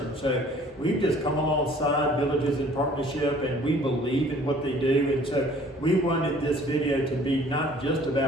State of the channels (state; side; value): normal; both; correlation 0.54